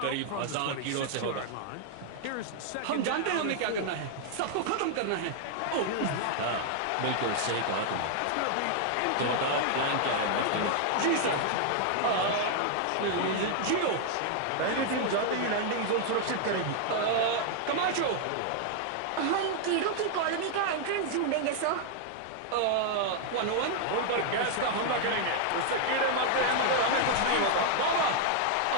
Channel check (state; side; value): different; both; correlation 0.00